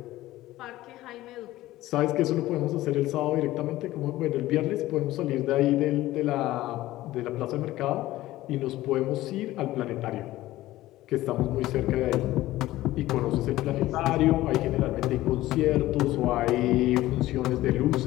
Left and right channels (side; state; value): right; quieter; 16.3 dB